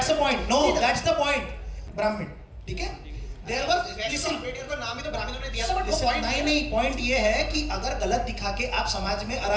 the point. No, that's the point. ब्राह्मण, ठीक है. There were, listen, अम्बेडकर को नाम ही तो ब्राह्मणों ने दिया था, बट वो listen, पॉइंट नहीं, पॉइंट ये है कि अगर गलत दिखा के आप समाज में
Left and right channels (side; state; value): both; identical; correlation 1.00